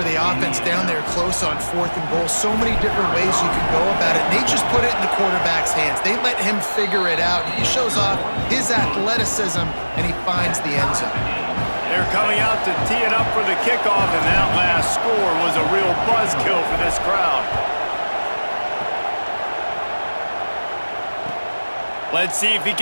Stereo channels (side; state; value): both; inverted; correlation -1.00